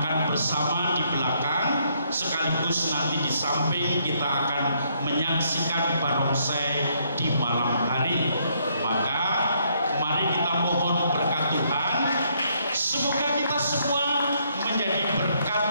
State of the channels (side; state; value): both; inverted; correlation -0.71